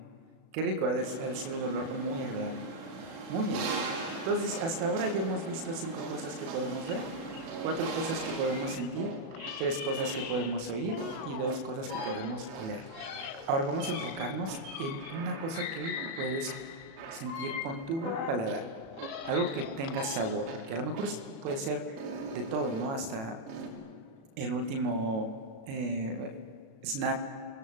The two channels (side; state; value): left; late; 36 ms